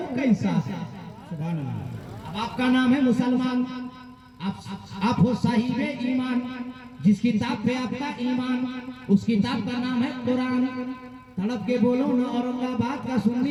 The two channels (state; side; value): identical; both; correlation 1.00